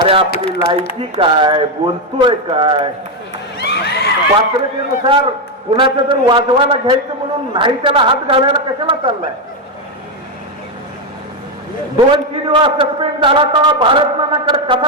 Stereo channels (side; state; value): both; normal; correlation 0.06